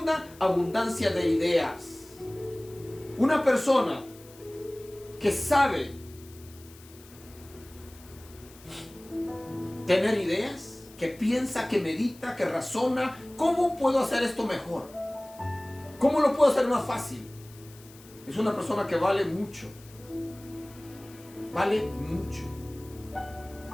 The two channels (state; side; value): noise; left; hiss, 22 dB below the sound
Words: abundancia de ideas. Una persona que sabe tener ideas, que piensa, que medita, que razona, ¿cómo puedo hacer esto mejor? ¿Cómo lo puedo hacer más fácil? Es una persona que vale mucho. Vale mucho.